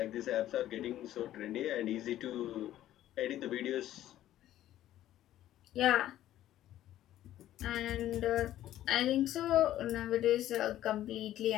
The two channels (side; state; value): right; quieter; 13.1 dB